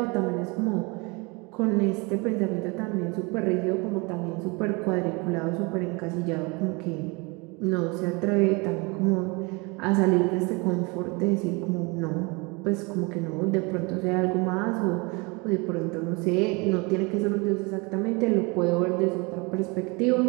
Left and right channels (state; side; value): quieter; left; 28.0 dB